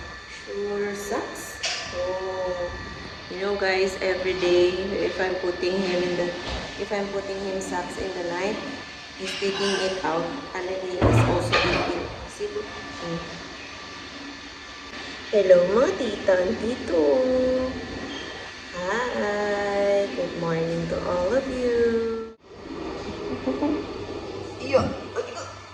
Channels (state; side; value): identical; both; correlation 1.00